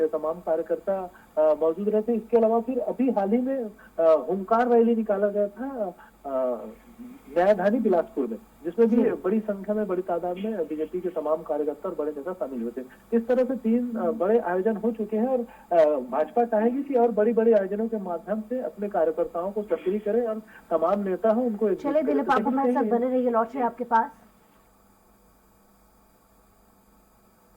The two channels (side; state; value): both; identical; correlation 1.00